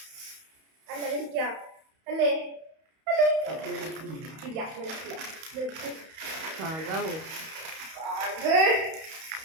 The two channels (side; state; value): left; late; 31 ms